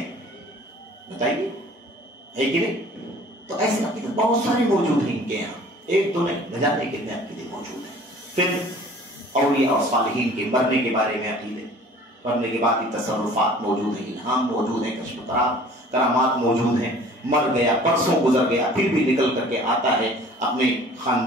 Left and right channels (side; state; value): both; normal; correlation 0.49